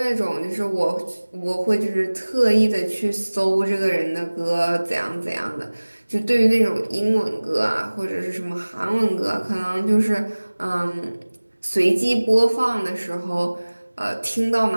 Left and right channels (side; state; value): both; inverted; correlation -1.00